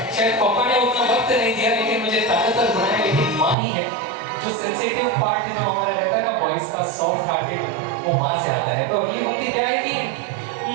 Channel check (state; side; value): drops out; left; at 3.6 s